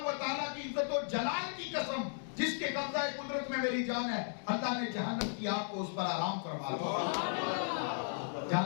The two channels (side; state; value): right; silent; digital silence